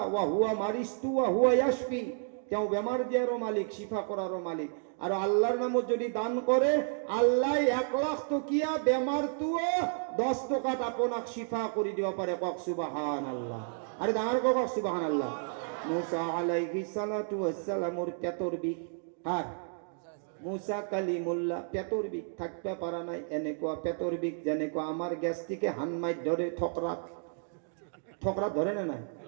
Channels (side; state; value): left; silent; digital silence